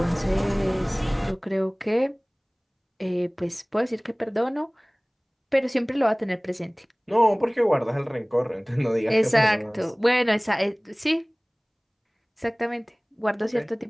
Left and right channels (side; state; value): both; identical; correlation 1.00